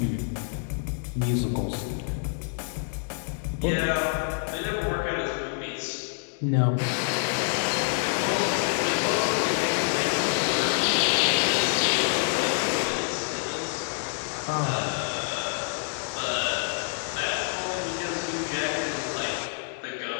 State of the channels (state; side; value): silent; right; digital silence